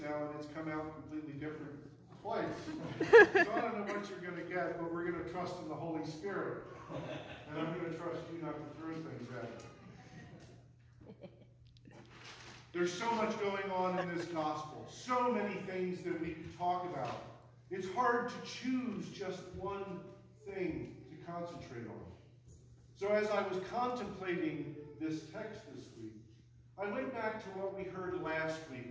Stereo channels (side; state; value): both; identical; correlation 1.00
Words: now, and it's come out completely different twice. So I don't know what you're going to get, but we're going to trust in the Holy Spirit. And I'm going to trust you not to throw things at me. There's so much going on in this gospel. So many things that we could talk about. It's hard to choose just one thing to concentrate on. So as I was contemplating this text this week, I went back to what we heard last